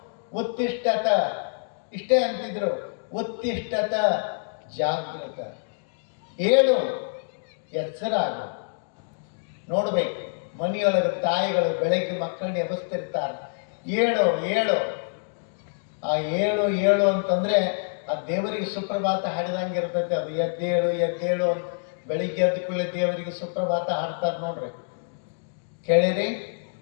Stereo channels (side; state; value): right; silent; digital silence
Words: ಉತ್ತಿಷ್ಠತ, ಇಷ್ಟೇ ಅಂತಿದ್ರು. ಉತ್ತಿಷ್ಠತ ಜಾಗೃತ, ಏಳು, ಎಚ್ಚರಾಗು. ನೋಡ್ಬೇಕು, ಮನೆಯೊಳಗೆ ತಾಯಿಗಳು ಬೆಳಗ್ಗೆ ಮಕ್ಕಳನ್ನ ಎಬ್ಬಿಸ್ತಿರ್ತಾರೆ, ಏಳು ಏಳು. ಆ ಏಳು ಏಳು ಅಂತಂದ್ರೆ ಆ ದೇವರಿಗೆ ಸುಪ್ರಭಾತ ಹಾಡಿದಂಗೆ ಇರ್ತೈತೆ. ಅದು ಎದ್ದೇಳು ಎದ್ದೇಳು ಅಂತ ಬೆಳಿಗ್ಗೆ ಎದ್ದ ಕೂಡಲೇ ದೇವರಿಗೆ ಸುಪ್ರಭಾತ ಹಾಡ್ತಾರೆ ನೋಡ್ರಿ. ಕೇಳಿರಿ?